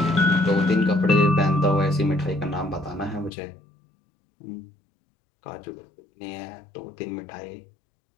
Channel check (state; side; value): drops out; right; at 3.3 s